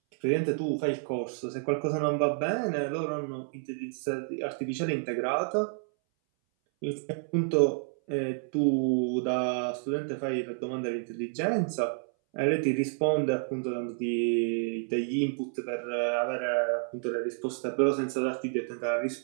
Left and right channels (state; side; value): silent; left; 58 dB below the other